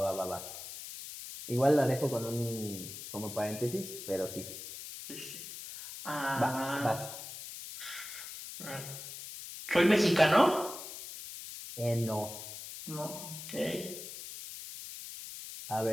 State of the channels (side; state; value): left; noise; hiss, 10 dB below the sound